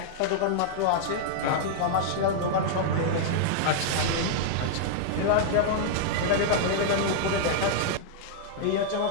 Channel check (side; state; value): both; different; correlation -0.01